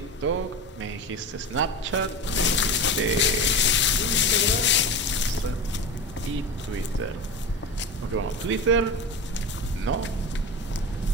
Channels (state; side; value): normal; both; correlation 0.25